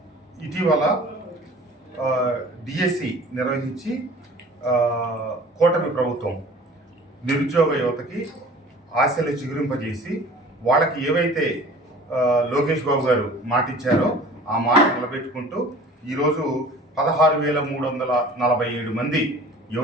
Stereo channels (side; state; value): both; normal; correlation 0.46